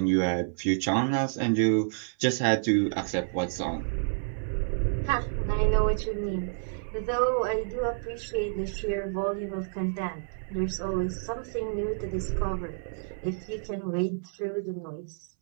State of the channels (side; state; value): left; silent; 58 dB below the other